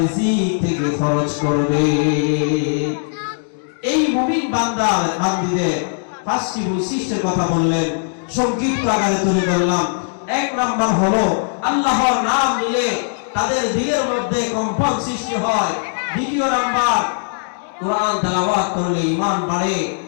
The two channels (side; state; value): right; silent; digital silence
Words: থেকে খরচ করবে। এই মুমিন বান্দা বান্দিদের 5টি বৈশিষ্ট্যের কথা বললেন, সংক্ষিপ্ত আকারে তুলে ধরলাম। 1 নাম্বার হলো আল্লাহর নাম নিলে তাদের দিলের মধ্যে কম্পন সৃষ্টি হয়। 2 নাম্বার, কোরআন তেলাওয়াত করলে ঈমান বাড়ে।